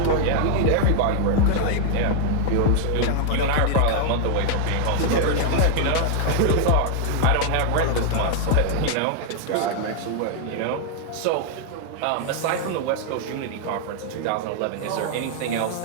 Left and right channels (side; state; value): both; different; correlation 0.00